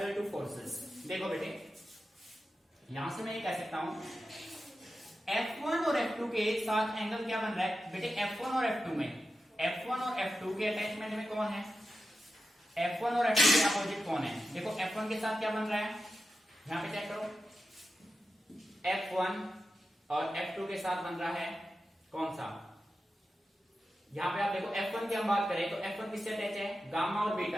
two forces. देखो बेटे, यहां से मैं ये कह सकता हूं F1 और F2 के साथ एंगल क्या बन रहा है? बेटे F1 और F2 में, F1 और F2 के अटैचमेंट में कौन है? F1 और F2 के अपोजिट कौन है? देखो F1 के साथ क्या बन रहा है, यहां पे चेक करो, F1 और F2 के साथ बन रहा है कौन सा? यहां पे आप देखो F1 की हम बात करें तो F1 किससे अटैच है? गामा और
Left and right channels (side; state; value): both; normal; correlation 0.91